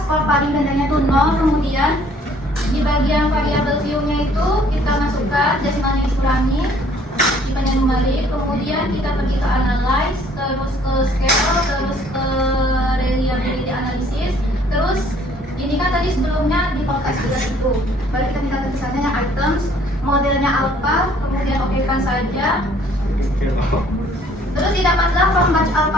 skor paling rendahnya itu 0, kemudian di bagian variabel view-nya itu kita masukkan desimalnya dikurangi, dipandang kembali, kemudian kita pergi ke analyze, terus ke scale, terus ke reliability analysis, terus ini kan tadi sebelumnya di podcast juga itu, baru kita minta tulisannya yang items, modelnya alpha, kemudian okekan saja. Terus didapatlah from batch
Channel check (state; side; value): normal; both; correlation 0.59